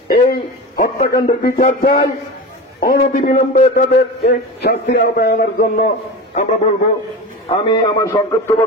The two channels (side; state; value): both; normal; correlation 0.29